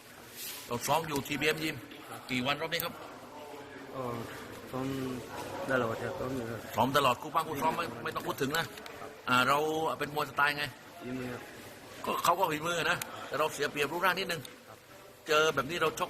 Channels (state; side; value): identical; both; correlation 1.00